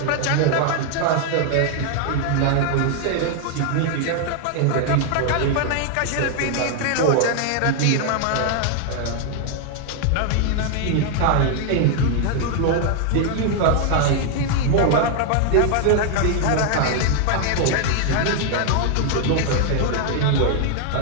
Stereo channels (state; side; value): different; both; correlation 0.00